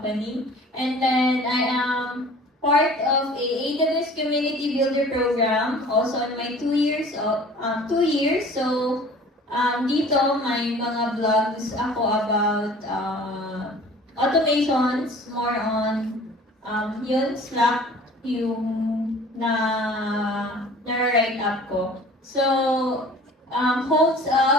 And then I am part of a AWS Community Builder program, also in my 2 years. So, dito may mga vlogs ako about automations, more on yun, Slack, yung na-write up ko. So, holds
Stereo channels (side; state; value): both; normal; correlation 0.47